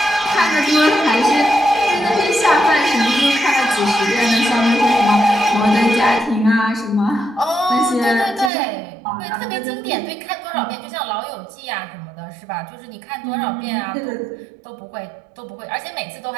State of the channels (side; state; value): left; drops out; at 8.5 s